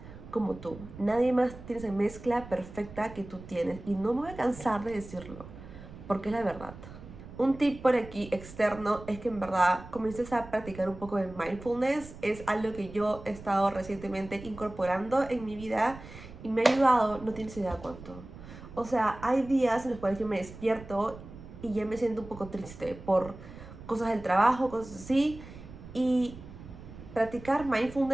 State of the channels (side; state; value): right; noise; rumble, 15 dB below the sound